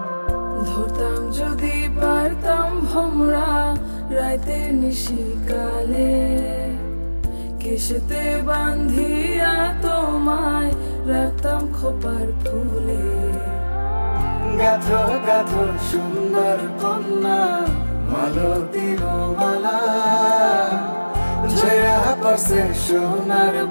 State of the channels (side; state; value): both; inverted; correlation -1.00